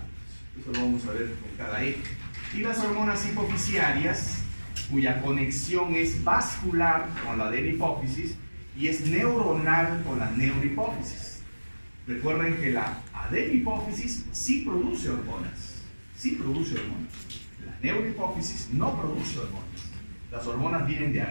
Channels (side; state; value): both; inverted; correlation -1.00